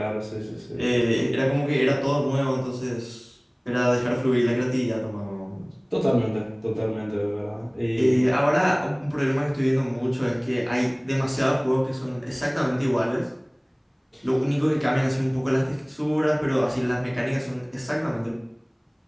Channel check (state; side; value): identical; both; correlation 1.00